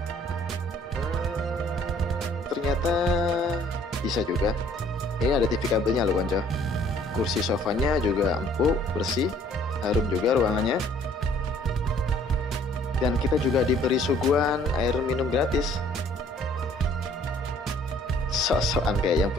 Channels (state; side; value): normal; both; correlation 0.58